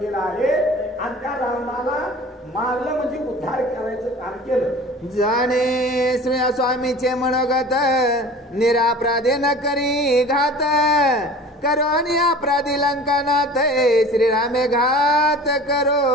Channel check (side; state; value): both; normal; correlation 0.42